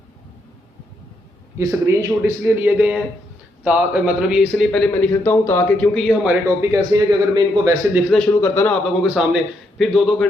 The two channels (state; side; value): normal; both; correlation 0.77